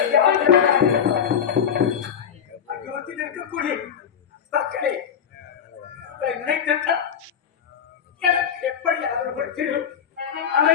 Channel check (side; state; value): right; quieter; 8.0 dB